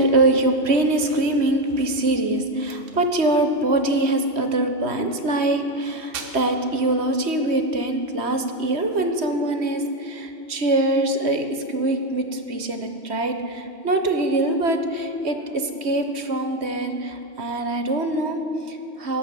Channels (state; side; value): late; left; 3.1 ms